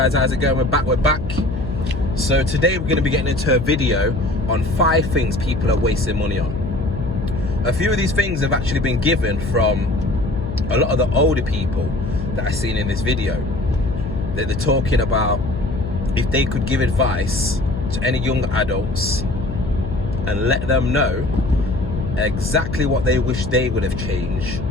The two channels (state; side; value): noise; left; hum, 7 dB below the sound